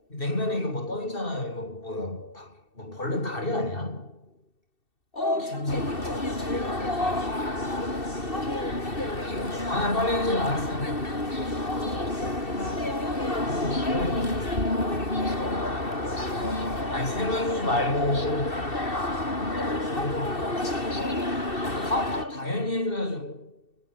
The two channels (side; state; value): right; late; 2.7 ms